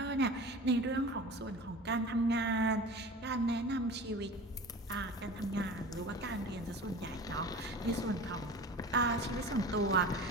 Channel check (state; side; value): normal; both; correlation 0.36